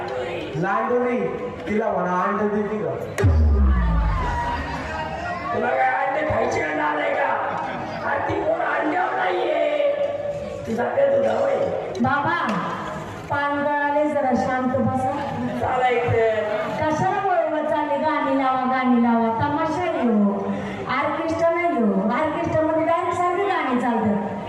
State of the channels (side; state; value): both; identical; correlation 1.00